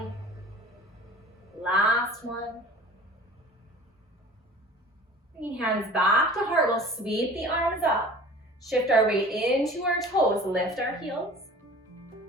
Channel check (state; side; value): normal; both; correlation 0.43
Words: Last one. Bringing hands back to heart, we'll sweep the arms up. Shift our weight into our toes, lift our heels.